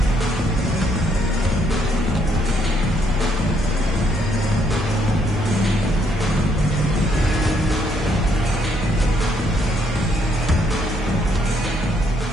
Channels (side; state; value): both; normal; correlation 0.71